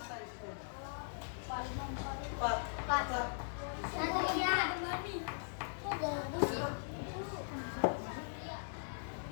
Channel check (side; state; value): right; silent; digital silence